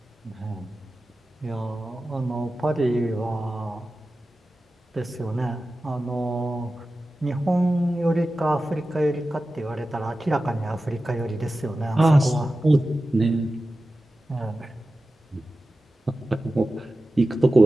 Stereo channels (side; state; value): both; normal; correlation 0.94